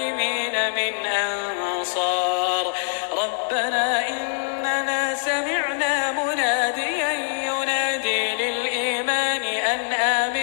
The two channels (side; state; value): right; silent; digital silence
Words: من أنصار ربنا إننا سمعنا مناديا ينادي للإيمان أن